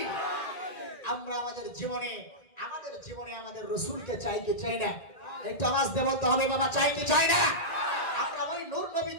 আমরা আমাদের জীবনে আমাদের রাসূলকে চাই কি চাই না? একটু আওয়াজ দিয়ে বলতে হবে বাবা, চাই কি চাই না? আমরা ওই নূর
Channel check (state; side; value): late; right; 1.9 ms